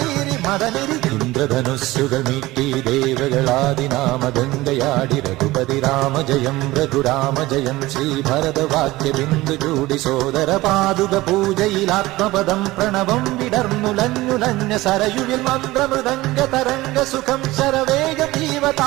రి മദനി ഇന്ദ്രധനുസ്സുകൾ മീട്ടി ദേവകളാദിനാമഗംഗയാടി രഘുപതി രാമജയം രഘുരാമജയം ശ്രീഭരതവാക്യ ബിന്ദു ചൂടി സോദര പാതുക പൂജയിൽ ആത്മപദം പ്രണവം വിടർന്നുലഞ്ഞുലഞ്ഞ സരയുവിൽ മന്ത്രമൃദംഗ തരംഗ സുഖം ശരവേഗ ജീവ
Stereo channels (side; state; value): left; quieter; 18.7 dB